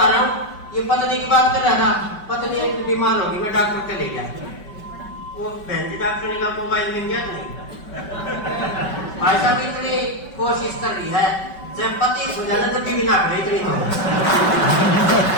रहा हूँ, ये पत्नी की बात कर रहा था, पत्नी एक बीमार होगी, मैं डॉक्टर के ले गया, वो बहन डॉक्टर ने मोबाइल मिल गया नहीं। भाई साहब इतनी कोशिश कर रही है, जब पति सुझाना तब भी ना करे इतनी तो,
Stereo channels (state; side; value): late; right; 5.3 ms